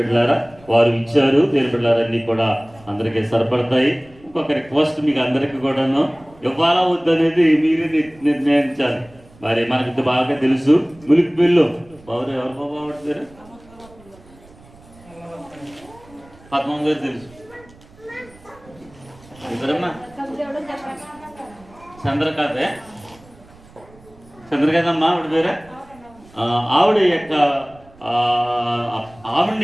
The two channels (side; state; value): right; noise; rumble, 25 dB below the sound